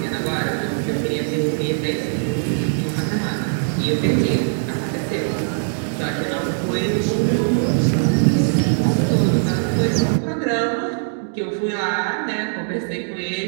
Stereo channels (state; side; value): silent; left; digital silence